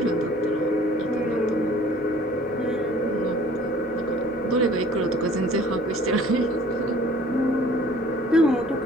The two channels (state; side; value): normal; both; correlation 0.52